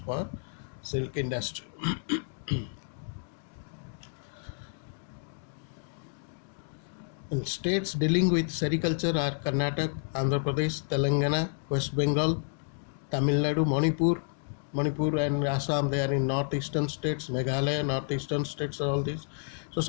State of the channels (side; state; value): right; silent; digital silence